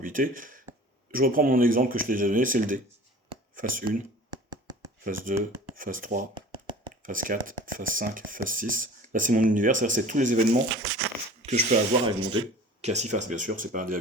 Je reprends mon exemple que je t'ai déjà donné, c'est le D. Phase 1, phase 2, phase 3, phase 4, phase 5, phase 6. Là, c'est mon univers, c'est-à-dire c'est tous les événements que je peux avoir avec mon D, qui a 6 faces, bien sûr, c'est pas un D à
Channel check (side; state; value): both; normal; correlation 0.43